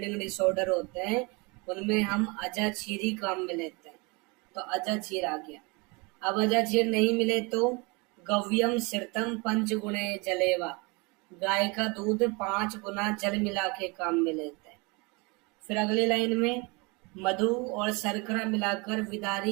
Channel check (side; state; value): left; quieter; 28.3 dB